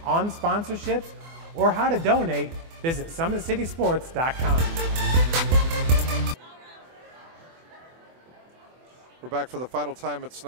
on sponsorships or how to donate, visit SummitCitySports.com. We're back for the final time at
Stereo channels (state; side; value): late; left; 24 ms